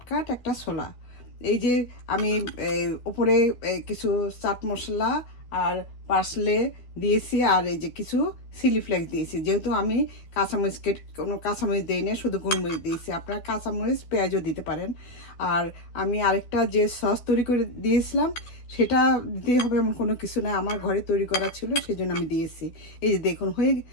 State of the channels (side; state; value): right; late; 12 ms